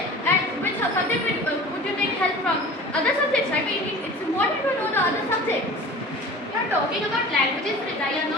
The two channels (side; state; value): both; normal; correlation 0.40